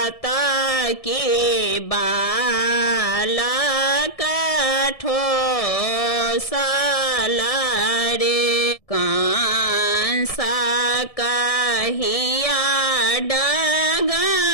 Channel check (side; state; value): right; late; 1.7 ms